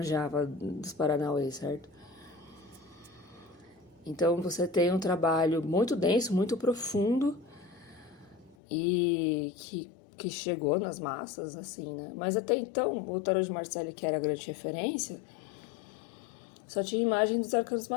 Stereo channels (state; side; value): drops out; right; at 8.6 s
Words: dos Paranauê, certo? Então você tem um trabalho muito denso, muito profundo e que chegou nas massas, assim, né? Mas até então, o Tarot de Marselli, que era a grande referência, só tinha imagem dos arcanos